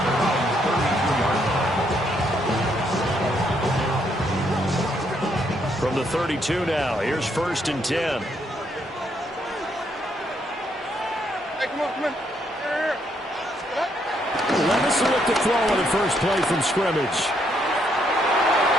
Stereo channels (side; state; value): both; normal; correlation 0.73